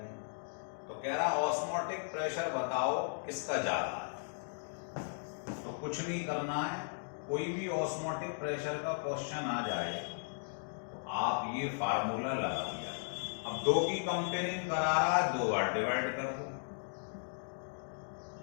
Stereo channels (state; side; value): silent; right; digital silence